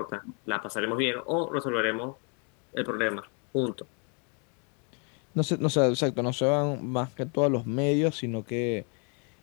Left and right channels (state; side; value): quieter; right; 37.2 dB